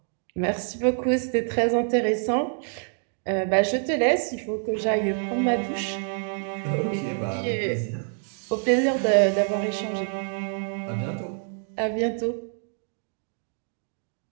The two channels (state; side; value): silent; left; 57 dB below the other